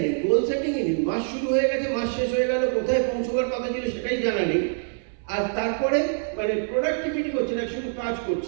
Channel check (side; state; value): left; silent; 62 dB below the other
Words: নেই, গোল সেটিংই নেই। মাস শুরু হয়ে গেছে, মাস শেষ হয়ে গেল, কোথায় পৌঁছবার কথা ছিল সেটাই জানা নেই। আর তারপরে মানে প্রোডাক্টিভিটি করছে না, শুধু কাজ